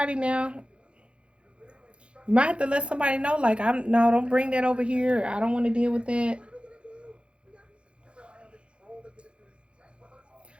now. You might have to let somebody know, like, don't bring that over here. I don't want to deal with that.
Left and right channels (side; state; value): left; late; 0.057 ms